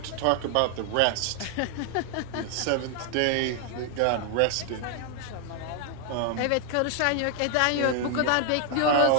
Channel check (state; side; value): different; both; correlation 0.00